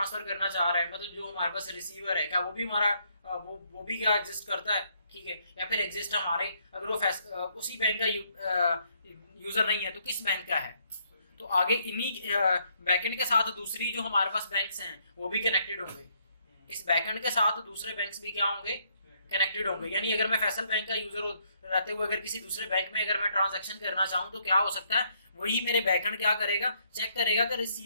करना चाह रहा है, मतलब जो हमारे पास रिसीवर है, क्या वो भी हमारा वो भी क्या एग्जिस्ट करता है, ठीक है, या फिर एग्जिस्ट हमारे, अगर वो उसी बैंक का यूजर नहीं है तो किस बैंक का है। तो आगे इन्हीं बैकएंड के साथ दूसरी जो हमारे पास बैंक्स हैं वो भी कनेक्टेड होंगे, इस बैकएंड के साथ दूसरे बैंक्स भी क्या होंगे, कनेक्टेड होंगे। यानी अगर मैं फैसल बैंक का यूजर रहते हुए अगर किसी दूसरे बैंक में अगर मैं ट्रांजैक्शन करना चाहूँ तो क्या हो सकता है, वही मेरे बैकएंड क्या करेगा, चेक करेगा कि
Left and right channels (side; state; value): both; inverted; correlation -0.71